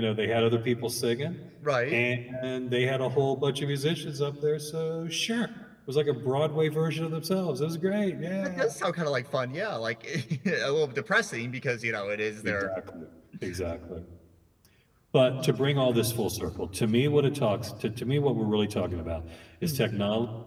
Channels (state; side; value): identical; both; correlation 1.00